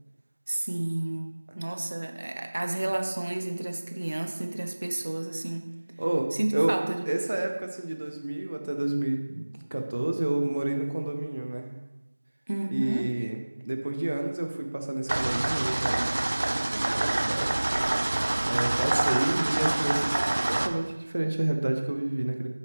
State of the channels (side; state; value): both; inverted; correlation -1.00